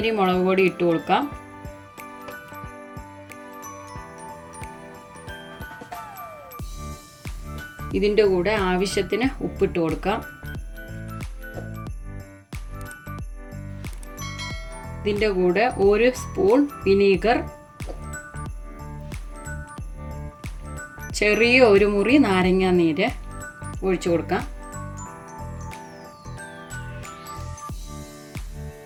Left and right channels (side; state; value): both; identical; correlation 1.00